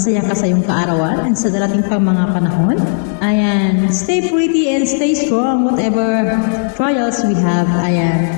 ka sa iyong kaarawan and sa darating pang mga panahon. Ayan, stay pretty and stay strong whatever trials we have.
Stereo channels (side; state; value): right; silent; digital silence